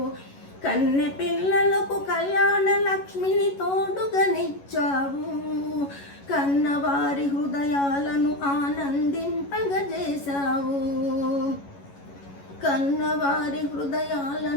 కన్నె పిల్లలకు కళ్యాణ లక్ష్మిని తోడుగనిచ్చావు, కన్నవారి హృదయాలను ఆనందింపగజేశావు, కన్నవారి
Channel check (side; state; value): right; late; 11 ms